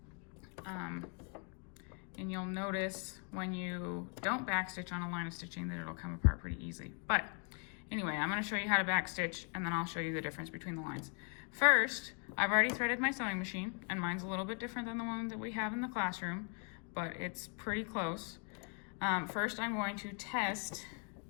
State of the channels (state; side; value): quieter; right; 38.4 dB